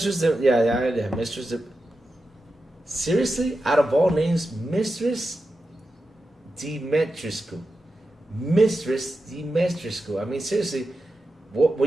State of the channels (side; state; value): both; normal; correlation 0.90